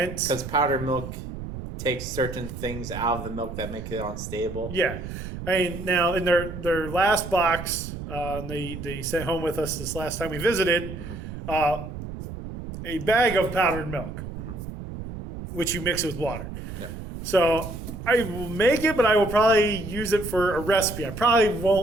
Because powdered milk takes certain things out of the milk that make it unstable. Yeah. I mean, now in their last box, they sent home with us this last time we visited, a bag of powdered milk, which you mix with water. Yeah. So I will make it, but I will probably use it for a recipe. I probably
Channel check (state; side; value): noise; right; rumble, 9 dB below the sound